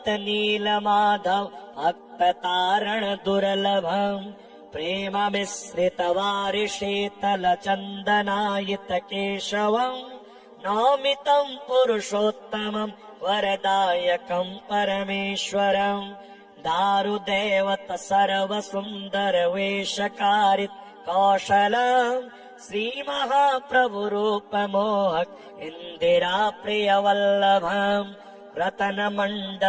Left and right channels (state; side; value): identical; both; correlation 1.00